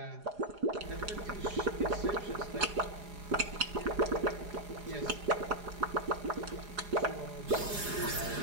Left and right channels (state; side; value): late; left; 4.9 ms